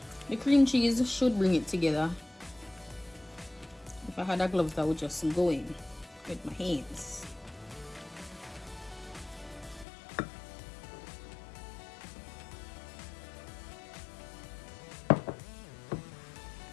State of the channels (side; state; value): right; drops out; at 9.9 s